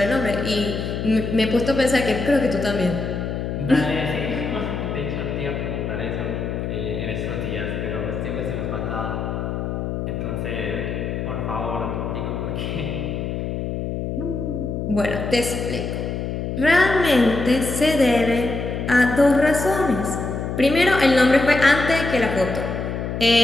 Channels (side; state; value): left; noise; hum, 3 dB below the sound